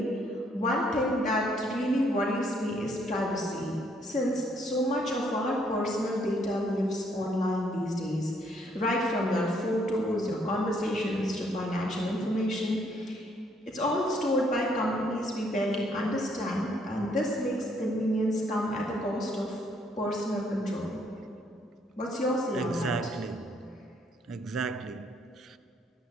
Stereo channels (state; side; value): normal; both; correlation 0.69